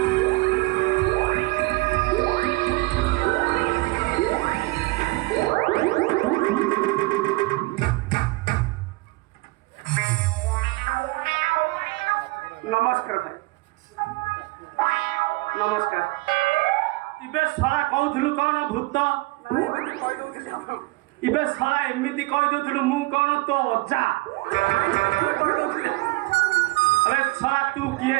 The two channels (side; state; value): left; quieter; 23.0 dB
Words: नमस्कार भाई नमस्कार इबे सला कहउथलु कोन भूत एमिति कहि दउथिली हम इबे सला एमिति कहि दउथलु मु कोन तो अज्जा कहि दउथिली अबे सला तू किए